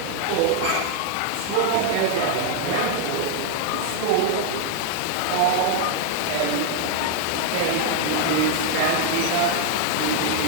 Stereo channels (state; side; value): different; both; correlation 0.00